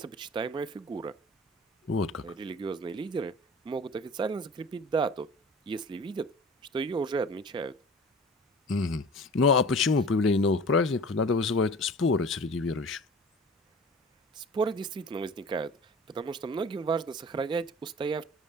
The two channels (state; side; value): normal; both; correlation 0.41